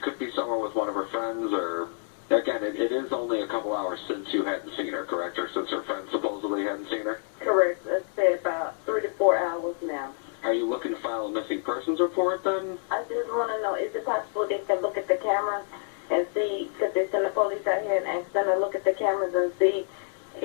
be somewhere with one of her friends or Again, it is only a couple hours since you hadn't seen her, correct? Or since her friend supposedly hadn't seen her? Correct. Let's say about 3 to 4 hours now. Are you looking to file a missing persons report then? I just want to know, is it possible they can look at the cameras and see, because they send the police out here and ask them to look at the cameras and see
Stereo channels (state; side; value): silent; right; 60 dB below the other